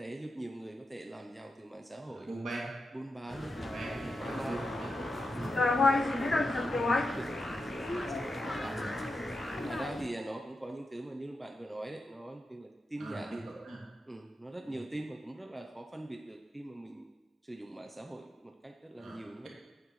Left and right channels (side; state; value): both; normal; correlation 0.88